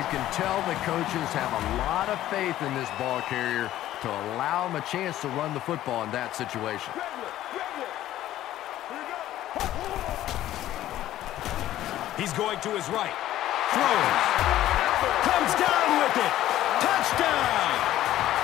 can tell the coaches have a lot of faith in this ball carrier to allow him a chance to run the football in that situation. He's going to his right. Throws. Comes down with it. Touchdown!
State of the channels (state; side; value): quieter; right; 13.6 dB